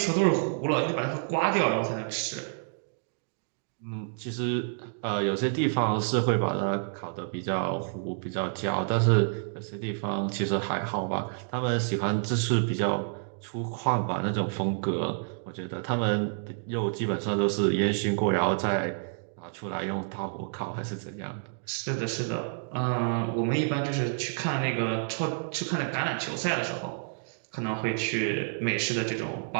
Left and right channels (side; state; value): left; silent; digital silence